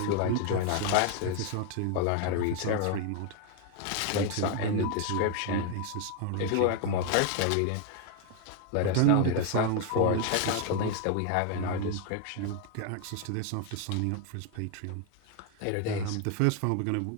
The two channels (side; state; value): both; different; correlation 0.01